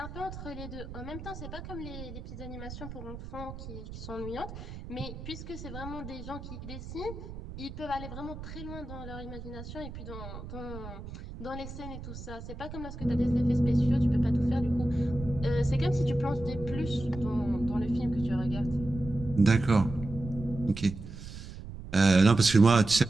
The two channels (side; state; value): right; noise; rumble, 11 dB below the sound